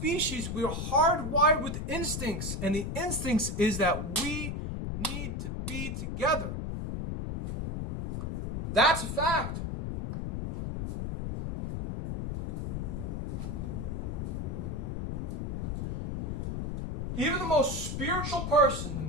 we're hardwired with instincts. And the instincts is that we need to be together. That's a fact. Even the most spiritual person, the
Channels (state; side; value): noise; left; rumble, 3 dB below the sound